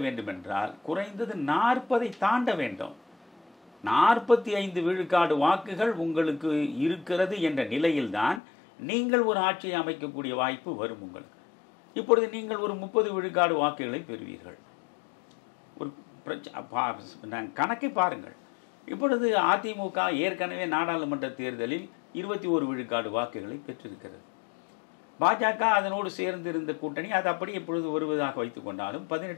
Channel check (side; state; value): right; drops out; at 8.4 s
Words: வேண்டும் என்றால் குறைந்தது 40 தாண்ட வேண்டும். 45 விழுக்காடு வாக்குகள் உங்களுக்கு இருக்கிறது என்ற நிலையில்தான் நீங்கள் ஒரு ஆட்சியை அமைக்கக்கூடிய வாய்ப்பு வரும் உங்களுக்கு. இப்பொழுது நீங்கள் ஒரு 30 விழுக்காடு வாக்குகளை பெறுவீர்கள். ஒரு கணக்கை பாருங்கள். இப்பொழுது அதிமுக ஏற்கனவே நாடாளுமன்ற தேர்தலில் 21 விழுக்காடு வாக்குகளை பெற்றிருக்கிறது. பாஜக அதனோடு சேர்ந்திருந்த கூட்டணி அது அப்படி இப்பொழுது வருவதாக வைத்துக் கொண்டாலும்